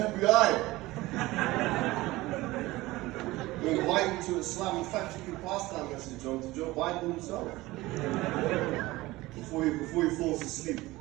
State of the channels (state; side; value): quieter; left; 19.3 dB